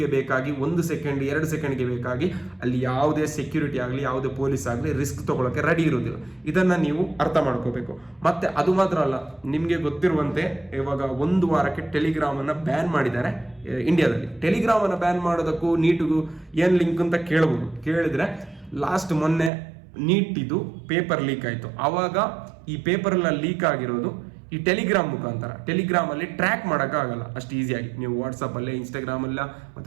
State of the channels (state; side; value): drops out; left; at 19.5 s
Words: ಬೇಕಾಗಿ 1 ಸೆಕೆಂಡ್ 2 ಸೆಕೆಂಡ್ಗೆ ಬೇಕಾಗಿ ಅಲ್ಲಿ ಯಾವುದೇ ಸೆಕ್ಯೂರಿಟಿ ಆಗಲಿ, ಯಾವುದೇ ಪೊಲೀಸ್ ಆಗಲಿ ರಿಸ್ಕ್ ತಗೊಳ್ಳೋಕೆ ರೆಡಿ ಇರೋದಿಲ್ಲ. ಇದನ್ನು ನೀವು ಅರ್ಥ ಮಾಡ್ಕೋಬೇಕು. ಮತ್ತೆ ಅದು ಮಾತ್ರ ಅಲ್ಲ, ನಿಮಗೆ ಗೊತ್ತಿರುವಂತೆ ಇವಾಗ 1 ವಾರಕ್ಕೆ ಟೆಲಿಗ್ರಾಮನ್ನು ಬ್ಯಾನ್ ಮಾಡಿದ್ದಾರೆ ಇಂಡಿಯಾದಲ್ಲಿ. ಟೆಲಿಗ್ರಾಮನ್ನು ಬ್ಯಾನ್ ಮಾಡೋದಕ್ಕೂ ನೀಟಿಗೂ ಏನು ಲಿಂಕ್ ಅಂತ ಕೇಳಿದ್ರೆ, ಲಾಸ್ಟ್ ಮೊನ್ನೆ ನೀಟಿದು ಪೇಪರ್ ಲೀಕ್ ಆಯಿತು. ಆವಾಗ ಈ ಪೇಪರೆಲ್ಲ ಲೀಕ್ ಆಗಿರೋದು ಈ ಟೆಲಿಗ್ರಾಮ್ ಮುಖಾಂತರ. ಟೆಲಿಗ್ರಾಮಲ್ಲಿ ಟ್ರ್ಯಾಕ್ ಮಾಡೋಕ್ಕಾಗಲ್ಲ ಅಷ್ಟು ಈಸಿಯಾಗಿ. ನೀವು ವಾಟ್ಸಪ್ಪಲ್ಲೇ, ಇನ್ಸ್ಟಾಗ್ರಾಮಲ್ಲ